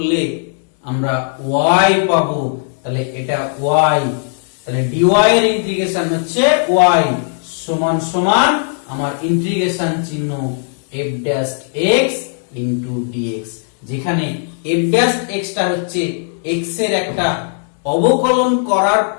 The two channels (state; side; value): silent; right; 68 dB below the other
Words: আমরা ওয়াই পাবো। তাহলে এটা ওয়াই, তাহলে ডিওয়াই এর ইন্টিগ্রেশন হচ্ছে ওয়াই সমান সমান আমার ইন্টিগ্রেশন চিহ্ন f dash x into dx, যেখানে এফ ড্যাশ এক্স টা হচ্ছে এক্স এর একটা অবকলন করার